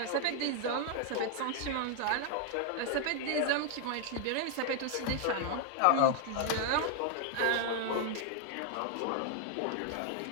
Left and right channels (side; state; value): both; different; correlation 0.00